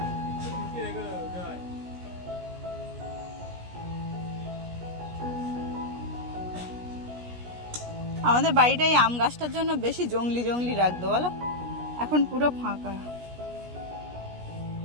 আমাদের বাড়িটা এই আম গাছটার জন্য বেশি জঙ্গলি জঙ্গলি রাখতো বলো, এখন পুরো ফাঁকা।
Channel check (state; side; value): late; left; 17 ms